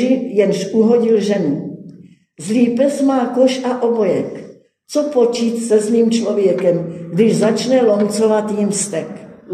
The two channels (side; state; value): both; identical; correlation 1.00